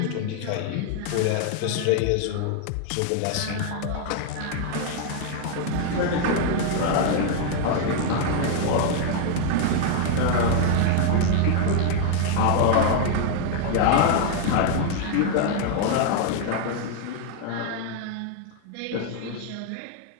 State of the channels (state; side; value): different; both; correlation 0.00